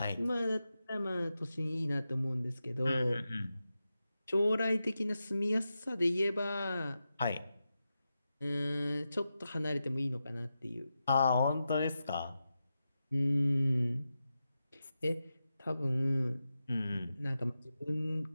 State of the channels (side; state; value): both; inverted; correlation -0.90